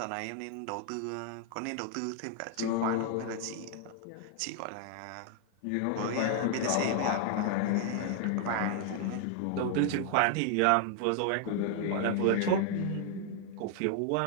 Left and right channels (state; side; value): different; both; correlation 0.00